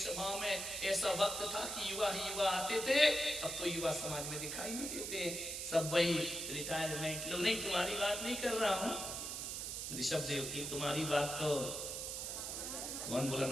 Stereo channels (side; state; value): right; noise; hiss, 4 dB below the sound